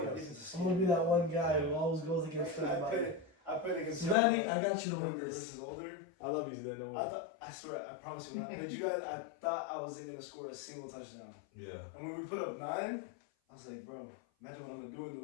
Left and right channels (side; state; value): right; drops out; at 4.2 s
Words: us. I'm gonna be that one guy who always goes against everybody. I played against Sudani, I got you to win younger this. versus older. I love you, Zidane. Don't worry. I swear, I promise you, when I played you guys, I thought I wasn't gonna score a single touchdown. Yeah. And when we put up 9, I was like, bro, imagine what I'm gonna do in